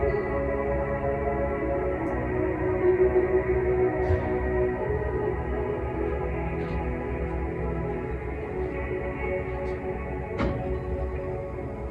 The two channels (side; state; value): both; identical; correlation 1.00